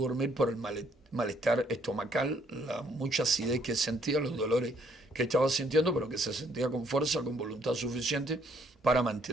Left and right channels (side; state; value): both; normal; correlation 0.66